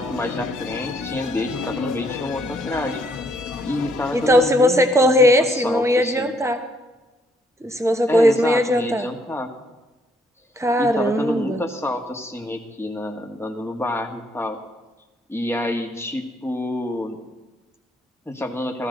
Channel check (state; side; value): normal; both; correlation 0.69